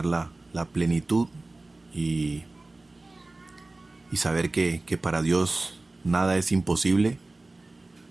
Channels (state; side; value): quieter; left; 3.0 dB